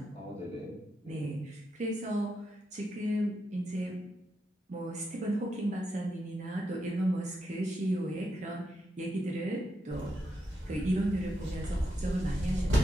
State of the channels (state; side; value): normal; both; correlation 0.84